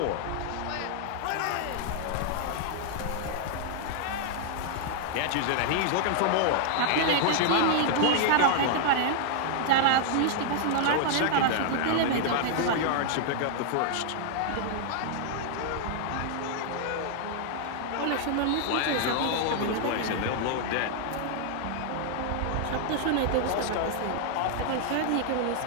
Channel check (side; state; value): both; different; correlation -0.01